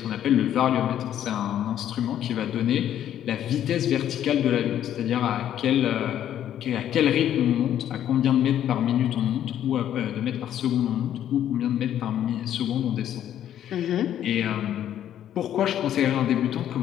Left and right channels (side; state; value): right; quieter; 10.8 dB